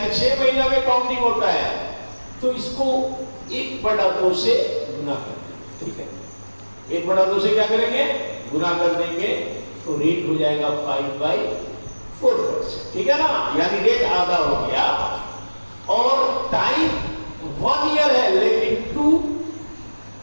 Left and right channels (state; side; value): inverted; both; correlation -1.00